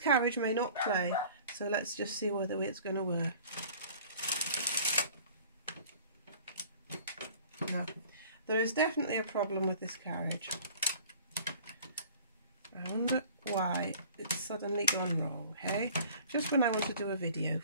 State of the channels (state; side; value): inverted; both; correlation -0.48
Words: may not play, so let's just see whether it's going to work. No, there is definitely a problem with this carriage. I wonder why it's suddenly gone wrong, hey? Just when I want to do a video